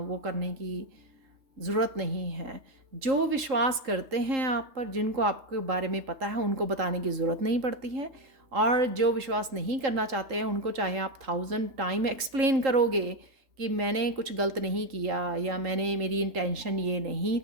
वो करने की ज़रूरत नहीं है। जो विश्वास करते हैं आप पर, जिनको आपके बारे में पता है, उनको बताने की ज़रूरत नहीं पड़ती है। और जो विश्वास नहीं करना चाहते हैं उनको चाहे आप 1000 टाइम एक्सप्लेन करोगे कि मैंने कुछ गलत नहीं किया या मेरी इंटेंशन ये नहीं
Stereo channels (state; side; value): late; left; 3.7 ms